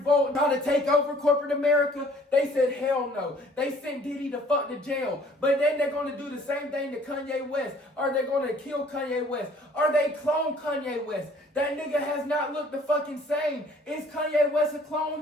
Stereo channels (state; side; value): normal; both; correlation 0.56